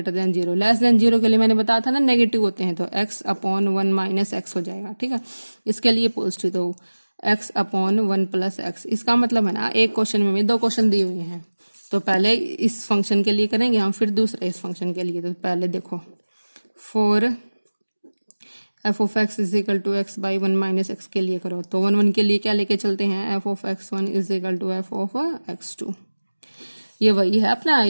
than 0। Less than 0 के लिए मैंने बताया था ना नेगेटिव होते हैं, तो x अपॉन 1 माइनस एक्स हो जाएगा, ठीक है। इसके लिए पॉजिटिव तो x अपॉन 1 प्लस एक्स। इसका मतलब है ना एक क्वेश्चन में दो क्वेश्चन दिए हुए हैं, तो पहले इस फंक्शन के लिए करेंगे हम, फिर दूसरे इस फंक्शन के लिए। तो पहले देखो for f of x is equal to x by 1 minus x के लिए करो, तो 1 1 के लिए क्या लेके चलते हैं f of x one is equal to F of x two. ये वही है अपना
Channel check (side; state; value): both; inverted; correlation -1.00